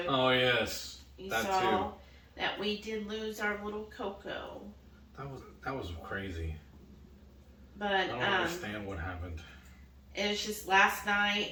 Oh, yes. You that saw too. that we did lose our little Coco. That was crazy. But I don't understand what happened. It was just last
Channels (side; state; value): both; identical; correlation 1.00